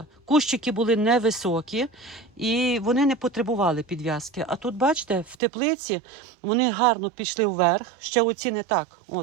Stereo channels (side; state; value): left; drops out; at 5.4 s